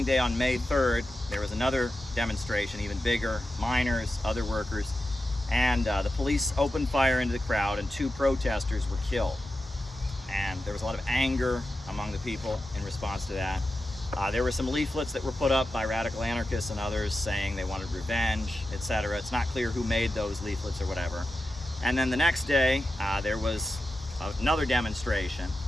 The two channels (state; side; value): normal; both; correlation 0.91